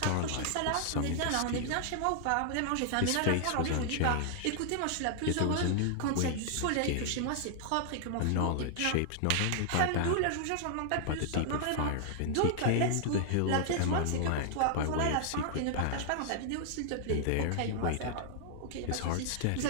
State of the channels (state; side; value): different; both; correlation 0.00